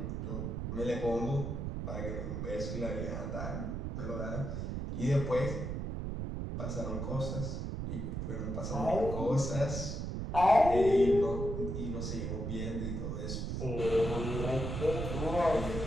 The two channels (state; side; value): noise; right; rumble, 3 dB below the sound